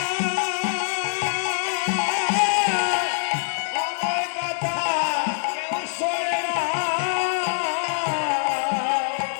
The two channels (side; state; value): right; silent; digital silence